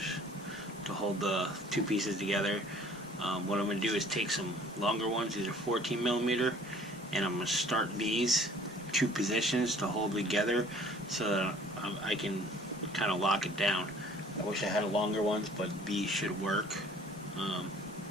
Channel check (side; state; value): both; normal; correlation 0.53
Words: to hold the two pieces together. What I'm going to do is take some longer ones, these are 14 millimeter, and I'm going to start these two positions to hold together so that I can kind of lock it down. I wish I had longer ones, but these should work.